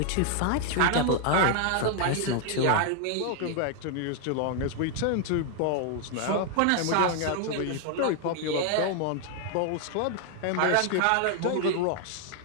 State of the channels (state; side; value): different; both; correlation 0.00